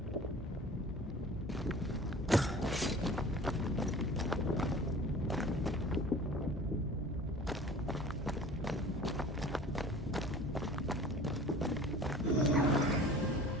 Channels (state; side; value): normal; both; correlation 0.43